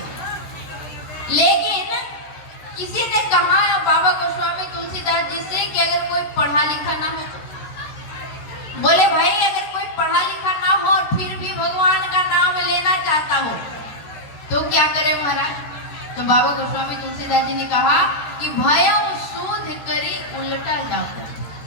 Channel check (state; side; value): late; right; 13 ms